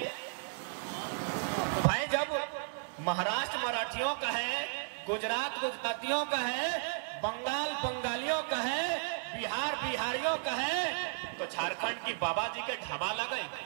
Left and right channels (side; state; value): left; silent; digital silence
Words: भाई। जब महाराष्ट्र मराठियों का है, गुजरात गुजरातियों का है, बंगाल बंगालियों का है, बिहार बिहारियों का है, तो झारखंड की बाबा जी के ढाबा लगे।